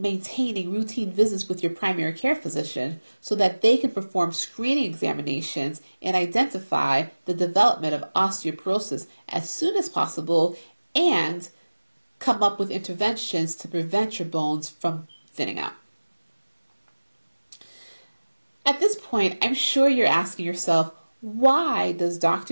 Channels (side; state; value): both; inverted; correlation -1.00